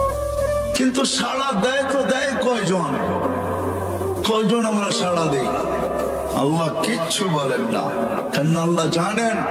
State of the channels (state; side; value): identical; both; correlation 1.00